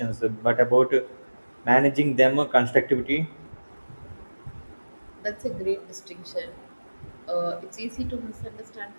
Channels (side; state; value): both; inverted; correlation -1.00